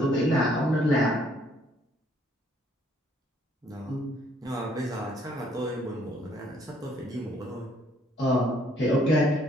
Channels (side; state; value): both; normal; correlation 0.65